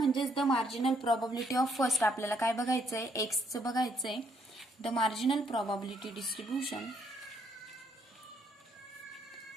the marginal probability of first आपल्याला काय बघायचंय, एक्सचं बघायचंय. The marginal probability distribution.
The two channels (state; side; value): normal; both; correlation 0.71